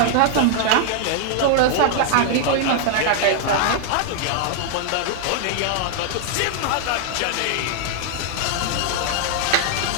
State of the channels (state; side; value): different; both; correlation 0.00